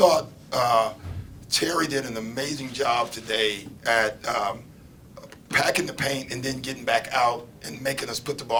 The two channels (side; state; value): both; identical; correlation 1.00